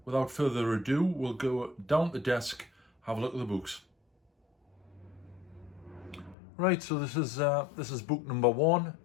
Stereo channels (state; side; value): drops out; right; at 6.4 s